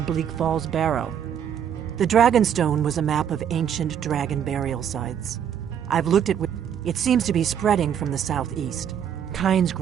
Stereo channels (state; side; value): quieter; left; 8.9 dB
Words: Bleak Falls Barrow. The Dragonstone was a map of ancient dragon burial sites. I've looked at it. It seems to be spreading from the southeast. Kynes